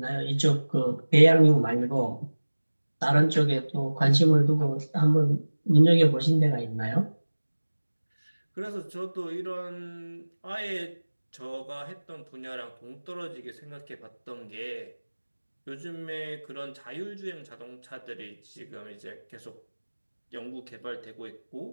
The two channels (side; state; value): both; inverted; correlation -1.00